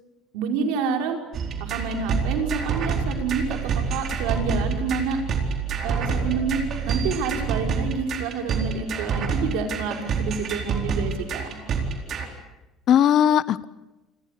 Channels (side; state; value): both; normal; correlation 0.47